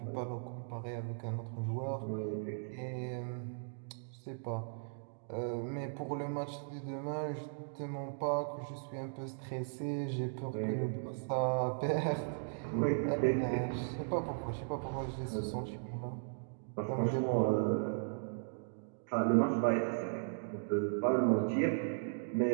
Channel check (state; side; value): silent; left; digital silence